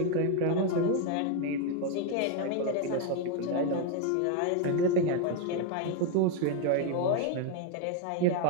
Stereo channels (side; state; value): both; different; correlation 0.01